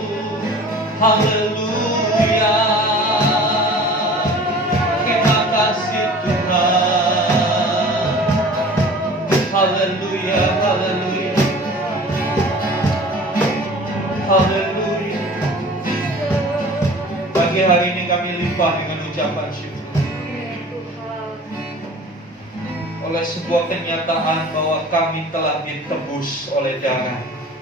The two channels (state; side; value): normal; both; correlation 0.44